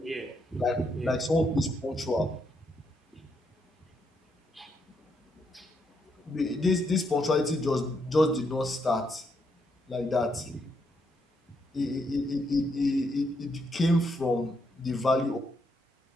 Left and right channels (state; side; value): normal; both; correlation 0.78